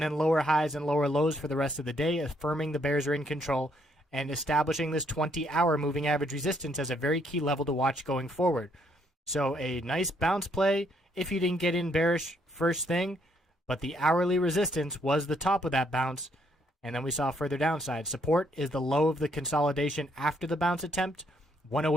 then lower highs and lower lows for the rest of the day, affirming the bears are in control and establishing this 20-hour moving average resistance as a very key level to watch going forward. So a nice bounce play if you didn't get in bearish first thing, but the hourly resistance was the top of that bounce, and then we saw further downside. Support is the low of the consolidation after the bounce attempt,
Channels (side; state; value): both; normal; correlation 0.71